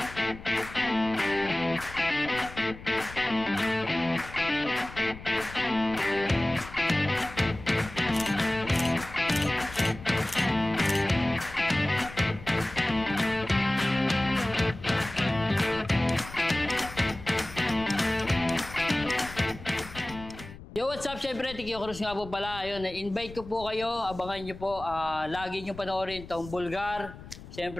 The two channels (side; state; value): left; noise; rumble, 15 dB below the sound